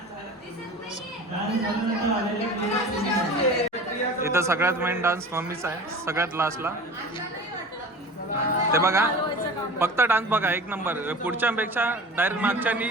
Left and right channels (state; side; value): normal; both; correlation 0.37